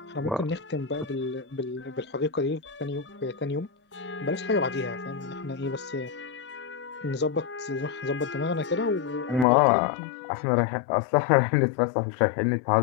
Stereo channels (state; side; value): drops out; right; at 9.5 s